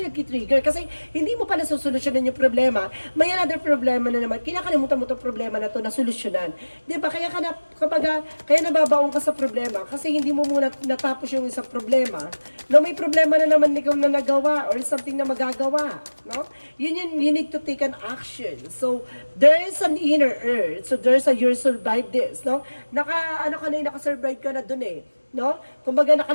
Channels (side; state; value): both; inverted; correlation -1.00